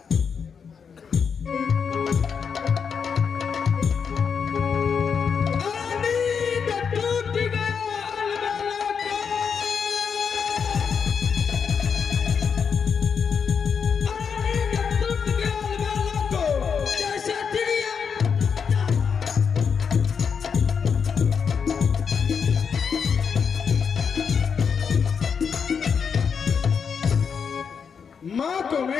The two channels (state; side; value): quieter; right; 6.4 dB